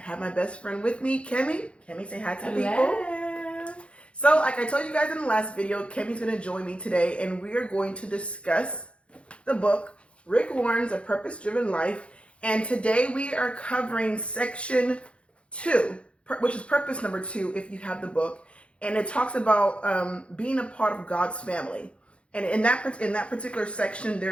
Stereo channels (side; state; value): right; late; 0.060 ms